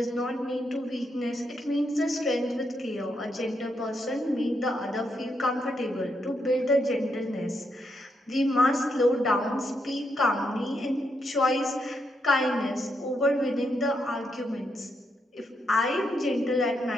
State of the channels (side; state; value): both; normal; correlation 0.80